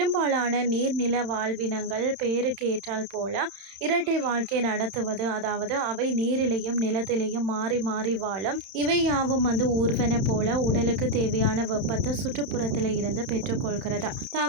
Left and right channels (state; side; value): late; left; 31 ms